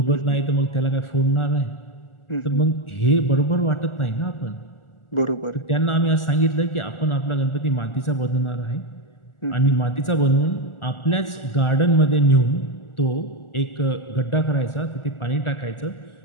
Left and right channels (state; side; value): late; right; 1.4 ms